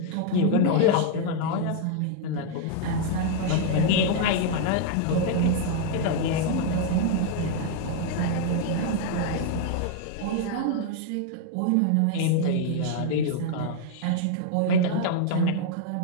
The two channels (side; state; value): both; different; correlation 0.00